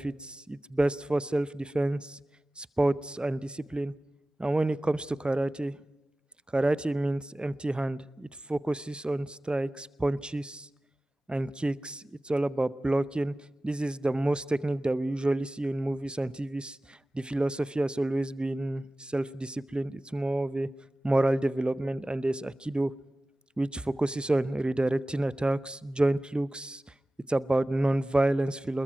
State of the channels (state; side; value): normal; both; correlation 0.97